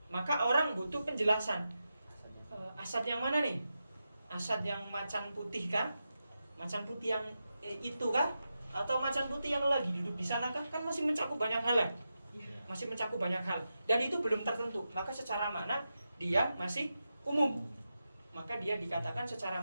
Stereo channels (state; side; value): inverted; both; correlation -0.89